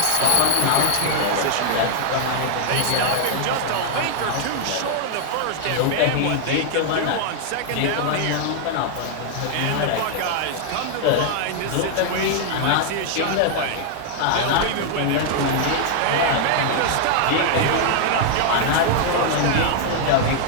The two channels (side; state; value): both; different; correlation 0.00